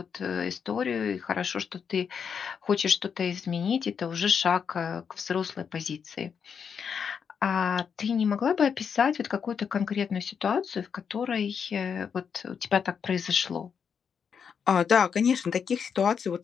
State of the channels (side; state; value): right; quieter; 6.9 dB